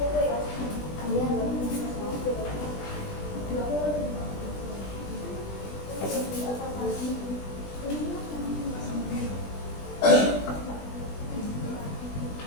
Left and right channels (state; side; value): late; right; 20 ms